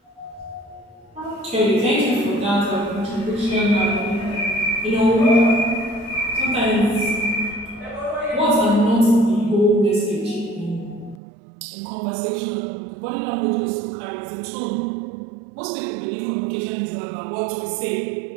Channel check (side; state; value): left; drops out; at 11.2 s